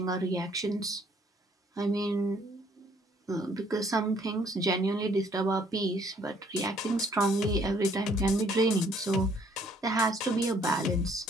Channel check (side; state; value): both; normal; correlation 0.63